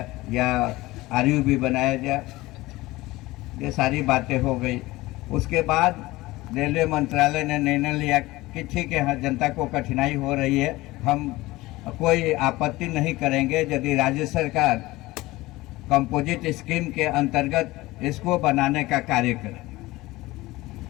या RUB बनाया जाए। ये सारी बातें हो गई। उसके बाद रेलवे मंत्रालय ने निर्णय लिया कि ठीक है, हाँ, जनता को कठिनाई हो रही है, हम कोई आपत्ति नहीं करेंगे यदि राज्य सरकार कंपोजिट स्कीम के अंतर्गत इसको बनाने का कार्य करे।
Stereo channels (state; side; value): quieter; right; 19.4 dB